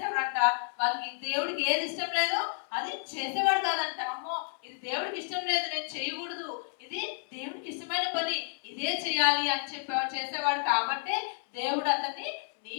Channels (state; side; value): silent; right; 57 dB below the other